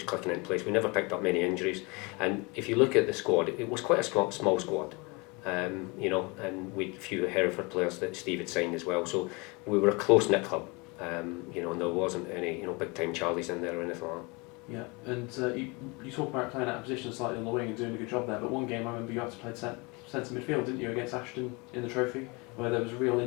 clicking in place. We never picked up many injuries, and if you look at the squad, it was quite a small squad, and we had a few Hereford players that Steve had signed as well, so we were a close-knit club, and there wasn't any big-time Charlies in there or anything like that. Yeah, and you talk about playing out of position slightly on the wing and doing a good job there, but one game I remember you had to play centre midfield, didn't you, against Ashton in the trophy, where there was a real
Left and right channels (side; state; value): right; quieter; 27.7 dB